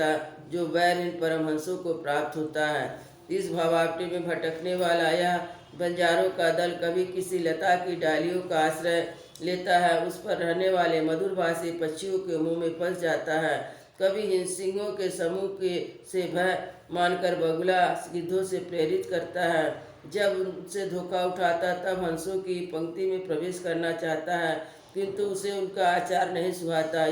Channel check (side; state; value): both; identical; correlation 1.00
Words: जो वैर इन परमहंसों को प्राप्त होता है। इस भावाप्ति में भटकने वाला यह बंजारों का दल कभी किसी लता की डालियों का आश्रय लेता है, उस पर रहने वाले मधुरभाषी पक्षियों के मुंह में फंस जाता है, कभी सिंहों के समूह के से भय मानकर बगुला गिद्धों से प्रेरित करता है, जब उनसे धोखा उठाता तब हंसों की पंक्ति में प्रवेश करना चाहता है, किंतु उसे उनका आचार नहीं सुहाता,